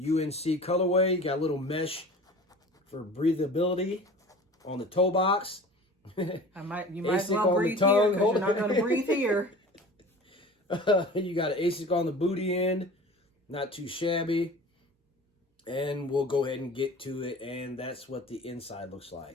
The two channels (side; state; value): both; normal; correlation 0.40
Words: colorway. You got a little mesh for breathability on the toe box. You might as well breathe here because you're not going to breathe here. You got an ASIC on the booty end. Not too shabby. And we'll go ahead and get to it. And that's what the inside looks